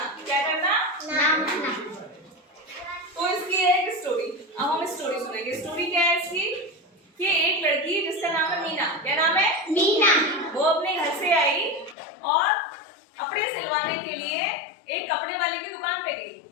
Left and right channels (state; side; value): drops out; right; at 12.0 s